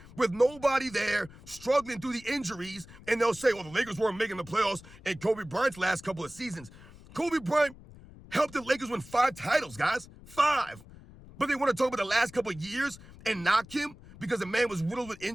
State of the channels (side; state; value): left; noise; rumble, 20 dB below the sound